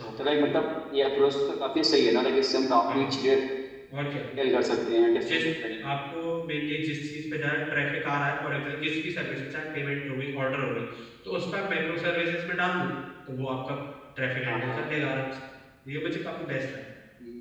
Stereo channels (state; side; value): identical; both; correlation 1.00